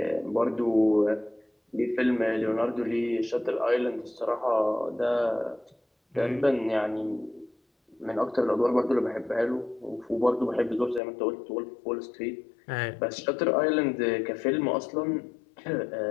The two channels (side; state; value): right; drops out; at 11.0 s